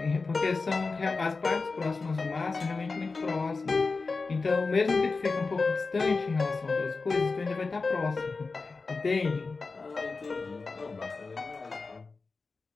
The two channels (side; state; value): right; quieter; 4.1 dB